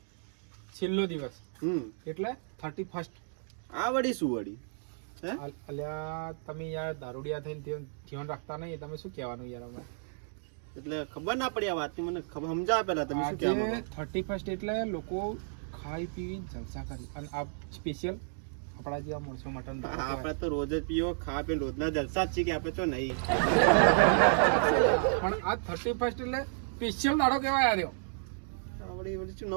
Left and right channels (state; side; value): silent; left; digital silence